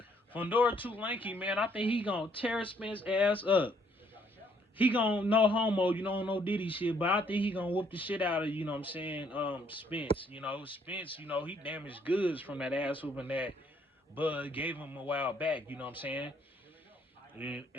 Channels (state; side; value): normal; both; correlation 0.66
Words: Fundora too lanky, man. I think he gonna tear Spence ass up. He gonna no homo, you know, no Diddy shit, but I think he gonna whoop the shit out of, you know what I'm saying, Spence. You know, Spence, you know, he damaged goods from that ass whooping that Bud gave him a while back, you know what I'm saying?